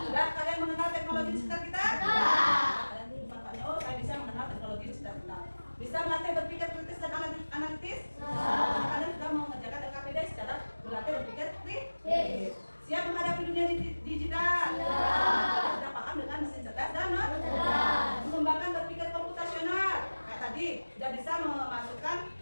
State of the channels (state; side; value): inverted; both; correlation -1.00